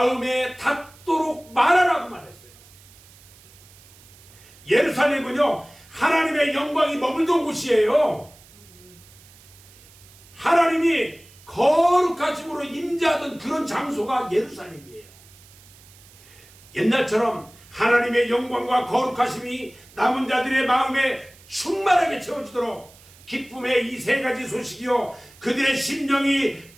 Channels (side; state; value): right; noise; hiss, 24 dB below the sound